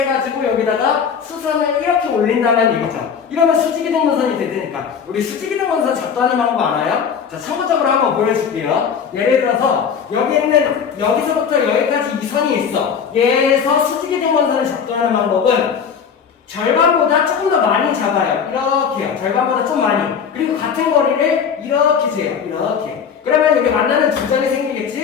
여기다가 수선을 이렇게 올린다는 얘기죠. 이러면 수직이등분선이 되니까. 우리 수직이등분선 작도하는 방법 알아요? 자, 참고적으로 한번 보여줄게요. 예를 들어서 여기 있는 여기서부터 여기까지 이 선이 있어. 얘에서 수직이등분선을 작도하는 방법은 절반보다 조금 더 많이 잡아요. 이렇게요. 절반보다 좀 많이. 그리고 같은 거리를 이렇게 재요. 이렇게. 그러면 여기 만나는 두 점이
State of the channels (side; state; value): right; quieter; 6.9 dB